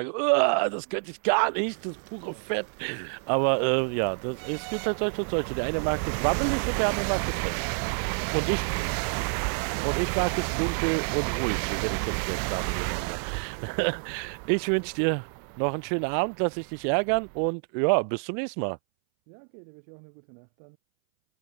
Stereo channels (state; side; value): silent; left; 60 dB below the other